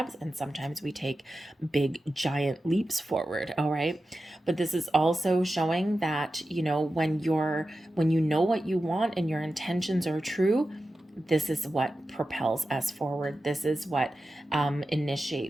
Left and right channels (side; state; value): both; normal; correlation 0.93